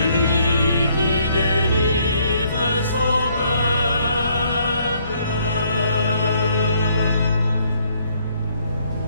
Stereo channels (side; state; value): both; inverted; correlation -0.67